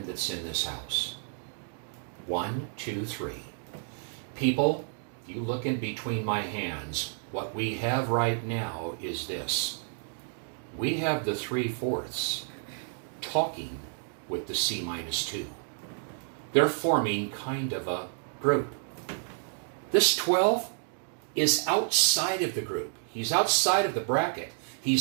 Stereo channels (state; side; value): silent; left; 58 dB below the other